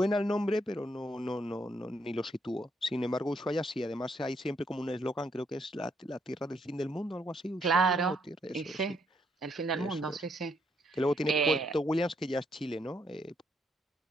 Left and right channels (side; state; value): both; normal; correlation 0.73